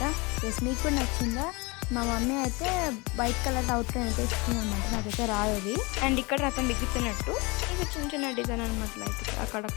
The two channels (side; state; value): right; quieter; 26.5 dB